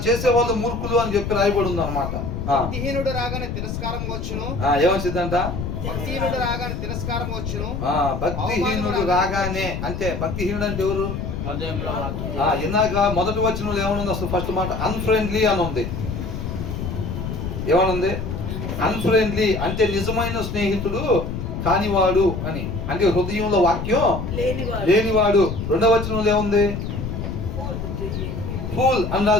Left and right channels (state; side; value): noise; left; rumble, 4 dB below the sound